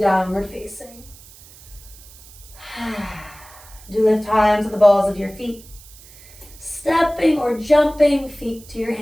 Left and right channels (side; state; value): right; noise; hiss, 21 dB below the sound